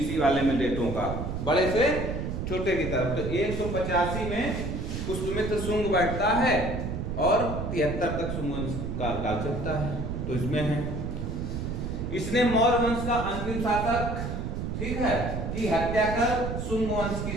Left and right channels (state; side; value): noise; right; rumble, 4 dB below the sound